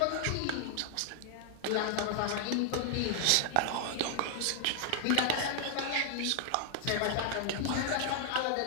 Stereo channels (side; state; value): both; different; correlation 0.00